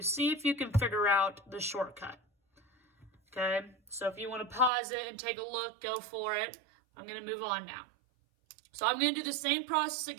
see if you can figure out the shortcut. Okay, so if you want to pause it and take a look, go for it. I'm going to move on now. So I'm going to do the same process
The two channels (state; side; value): drops out; left; at 4.7 s